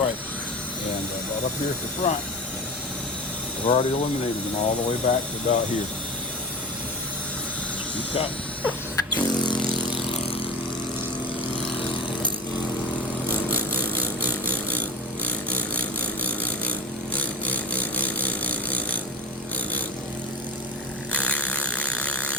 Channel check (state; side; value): normal; both; correlation 0.29